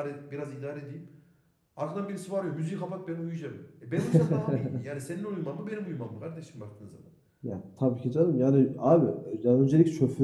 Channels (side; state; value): both; identical; correlation 1.00